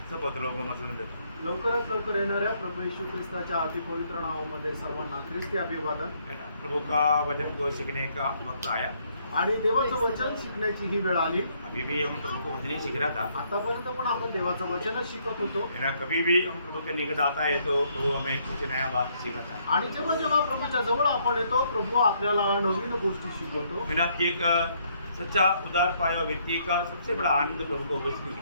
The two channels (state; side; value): inverted; both; correlation -0.70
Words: सपत लोक मसलन देतो। लवकरात लवकर येणाऱ्या प्रभू येशू ख्रिस्ताच्या अति पवित्र नावामध्ये सर्वांना ख्रिस्ती अभिवादन। प्रभु का वचन को सीखने का वक्त आया आणि देवाचं वचन शिकण्याची ही वेळ आली। अभी भी हम प्रभु को वचन ही सीख रहा था। आतापर्यंत पण आपण देवाचं वचनच शिकत होतो। कभी भी हम प्रभु के निकट आता है तो प्रभु हमें कुछ नया बात सिखाता है। आणि जेव्हा जेव्हा प्रभूच्या जवळ आपण येतो प्रभू आपल्याला नवीन गोष्टी शिकवतो। एक सच्चा उदार पाया व्यक्ति का सबसे बड़ा आनंद प्रभु को उपस्थिति